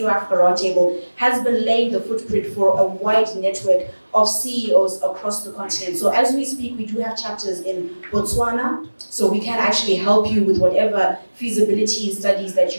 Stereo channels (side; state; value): both; inverted; correlation -1.00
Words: Africa Roundtable has been laying the footprint for a wide network of CEOs across the continent. So as we speak, we do have chapters in Botswana, so we can actually help you with whatever feasibility studies that